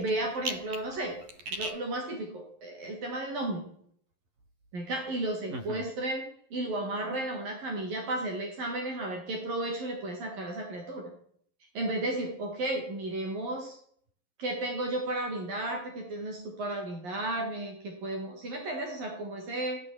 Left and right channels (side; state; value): left; late; 11 ms